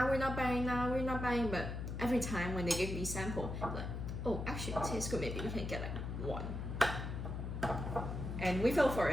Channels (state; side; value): noise; left; hum, 4 dB below the sound